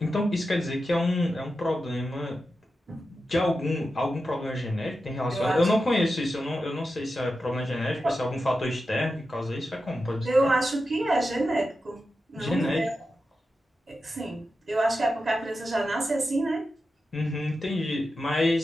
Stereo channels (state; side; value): normal; both; correlation 0.90